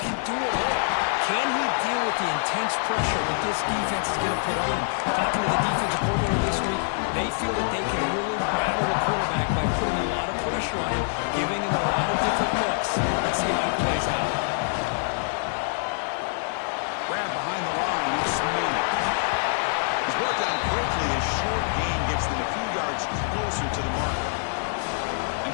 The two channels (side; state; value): right; silent; digital silence